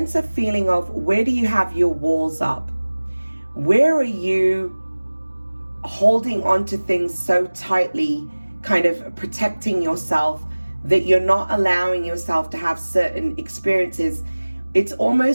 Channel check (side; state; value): both; inverted; correlation -1.00